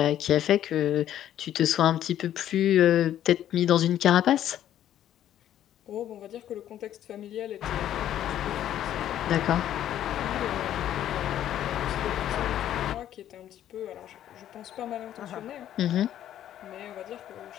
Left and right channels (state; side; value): quieter; right; 11.4 dB